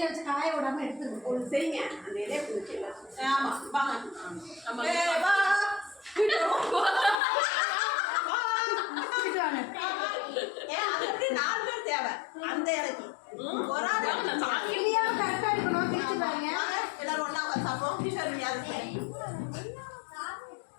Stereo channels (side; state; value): right; drops out; at 7.2 s